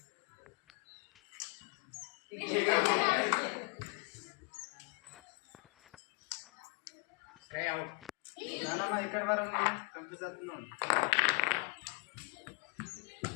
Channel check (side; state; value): right; quieter; 32.3 dB